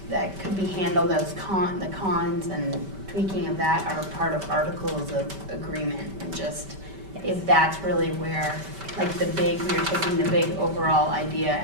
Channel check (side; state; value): left; late; 5.2 ms